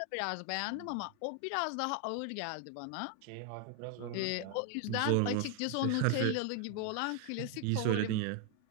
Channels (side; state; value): both; different; correlation 0.01